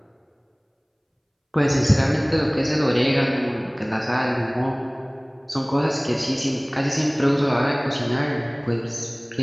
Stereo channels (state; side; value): identical; both; correlation 1.00